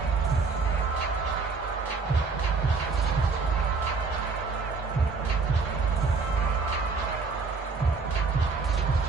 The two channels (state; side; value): quieter; left; 4.5 dB